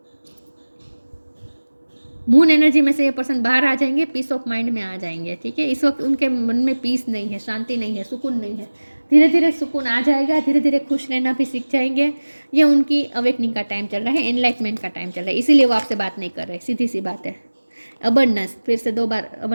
मून एनर्जी में से ये पर्सन बाहर आ जाएंगे, पीस ऑफ माइंड में आ जाएंगे, ठीक है। इस वक्त उनके मन में पीस नहीं है, शांति नहीं है, सुकून नहीं है। धीरे धीरे सुकून आ जाएगा, धीरे धीरे खुश रहना भी सीख जाएंगे। ये उनकी अवेकनिंग का टाइम चल रहा है, एनलाइटमेंट का टाइम चल रहा है, इसीलिए वो आपसे बात नहीं कर रहे, सीधी सी बात है। अबंडेंस, फिर से 2 बार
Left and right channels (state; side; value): inverted; both; correlation -1.00